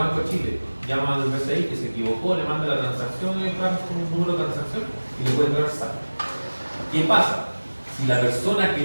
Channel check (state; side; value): inverted; both; correlation -1.00